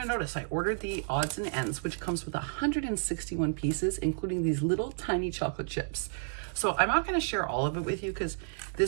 notice, I ordered the odds and ends, which comes with 161 pieces, including these little tiny chocolate chips. So I'm not gonna share all of it with you because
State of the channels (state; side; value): silent; left; digital silence